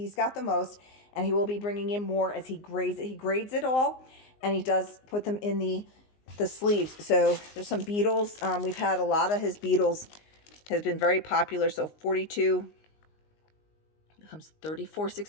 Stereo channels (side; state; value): right; late; 19 ms